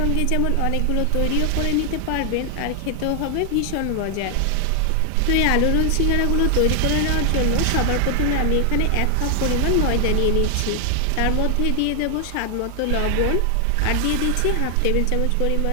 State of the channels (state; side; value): different; both; correlation 0.00